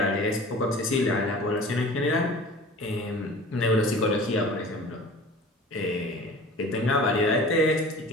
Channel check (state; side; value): normal; both; correlation 0.42